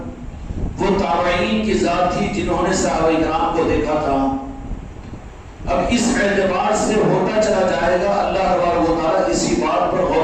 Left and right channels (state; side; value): identical; both; correlation 1.00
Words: وہ تابعین کی ذات تھی جنہوں نے صحابہ کرام کو دیکھا تھا۔ اب اس اعتبار سے ہوتا چلا جائے گا، اللہ تبارک و تعالیٰ اسی بات پر